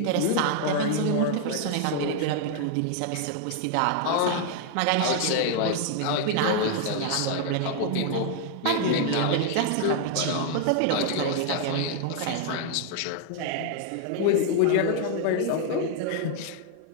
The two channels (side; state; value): both; different; correlation 0.00